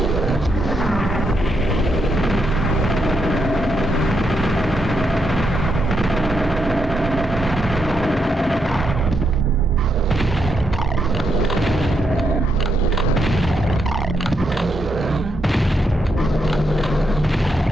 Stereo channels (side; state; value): both; normal; correlation 0.80